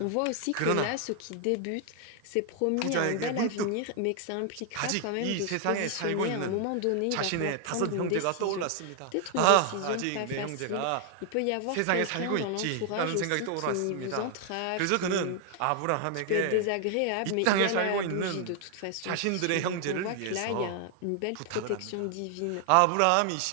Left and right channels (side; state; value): both; different; correlation 0.00